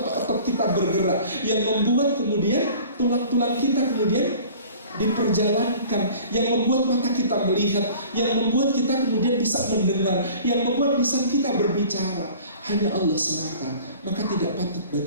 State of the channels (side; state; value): both; inverted; correlation -0.46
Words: otot-otot kita bergerak, yang membuat kemudian tulang-tulang kita kemudian diperjalankan, yang membuat mata kita melihat, yang membuat kita kemudian bisa mendengar, yang membuat lisan kita berbicara, hanya Allah semata. Maka tidak patut